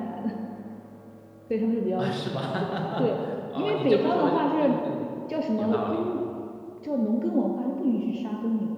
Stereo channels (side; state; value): both; identical; correlation 1.00